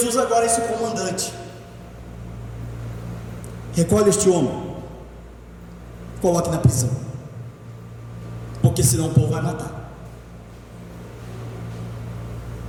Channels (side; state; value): both; identical; correlation 1.00